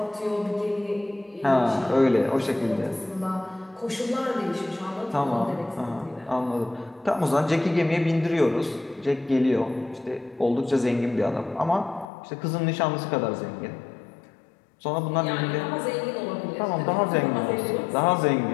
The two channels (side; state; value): right; drops out; at 12.1 s